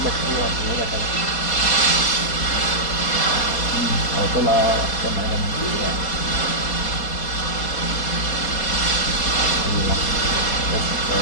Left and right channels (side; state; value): right; late; 4.2 ms